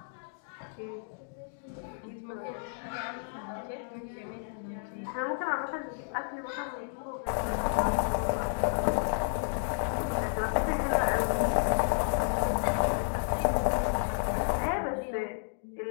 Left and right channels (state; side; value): silent; right; digital silence